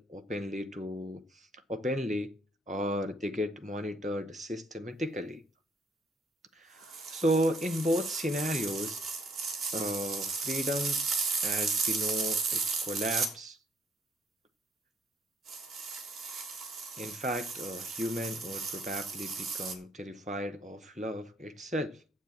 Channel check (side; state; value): both; normal; correlation 0.66